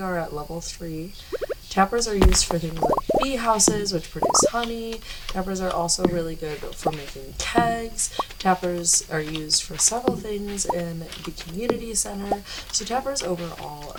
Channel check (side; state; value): both; identical; correlation 1.00